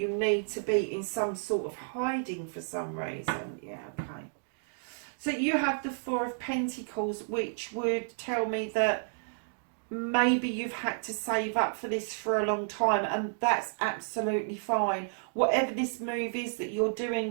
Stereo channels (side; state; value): left; silent; digital silence